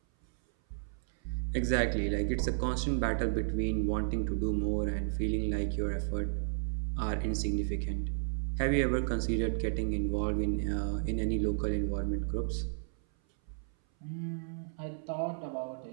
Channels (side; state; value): left; silent; 56 dB below the other